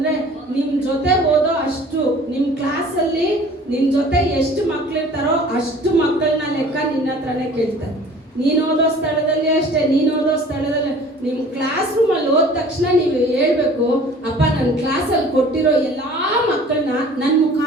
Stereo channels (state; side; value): normal; both; correlation 0.48